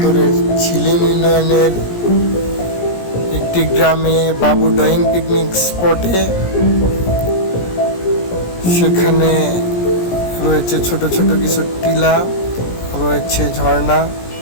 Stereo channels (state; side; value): late; right; 17 ms